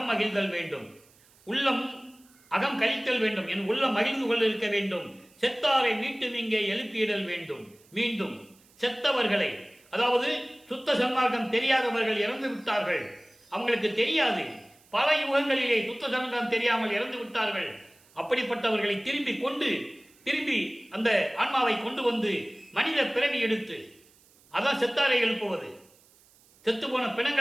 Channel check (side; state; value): right; noise; hiss, 29 dB below the sound